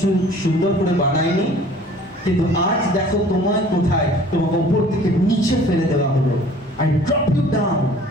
সুন্দর করে বানাইনি? কিন্তু আজ দেখো তোমায় কোথায়, তোমাকে উপর থেকে নিচে ফেলে দেওয়া হলো। I drop you down।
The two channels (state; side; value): normal; both; correlation 0.50